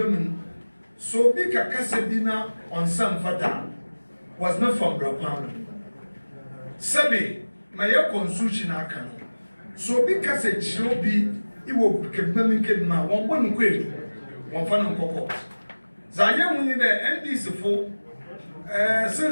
So big a Casabina on some fata was not from Brapano. Sabi, my consumption akano. So big as a chilobi, it will become ma one quid, one fan cocoa. Zaya winning the NDC for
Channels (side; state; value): both; inverted; correlation -1.00